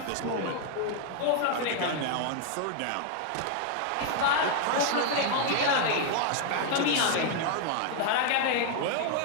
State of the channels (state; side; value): different; both; correlation 0.00